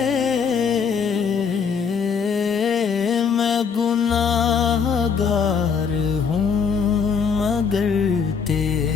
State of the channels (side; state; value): right; quieter; 6.2 dB